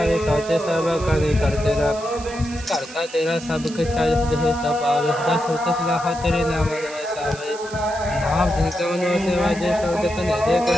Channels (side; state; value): right; noise; hiss, 16 dB below the sound